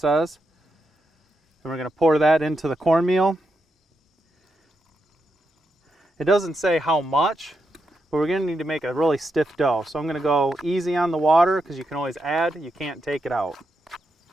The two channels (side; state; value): both; normal; correlation 0.84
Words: And we're going to pour that into the cornmeal. It doesn't say how much, but we're going to need to make a really stiff dough. So I'm going to go easy on the water because you can always add, you can't take it out.